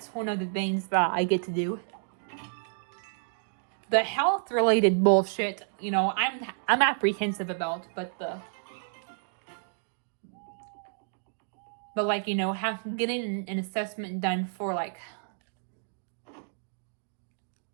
one of the things that I get to do. The health-related bullshit, I'm apprehensive about, but like, getting an assessment done for like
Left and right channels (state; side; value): silent; left; digital silence